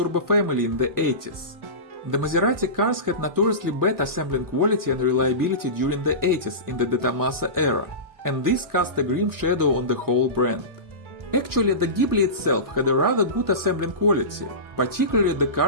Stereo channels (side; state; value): left; late; 1.2 ms